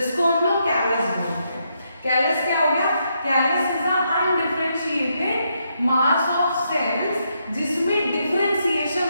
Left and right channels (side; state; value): both; inverted; correlation -0.79